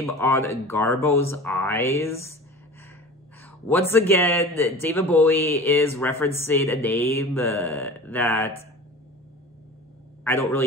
on Garbo's eyes. Once again, David Bowie is referencing a name that I don't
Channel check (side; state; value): both; normal; correlation 0.37